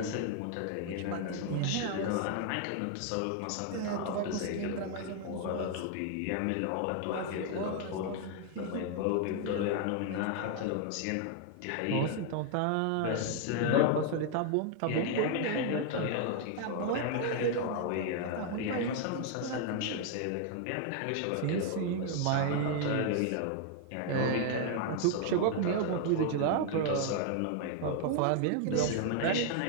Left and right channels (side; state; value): both; different; correlation 0.00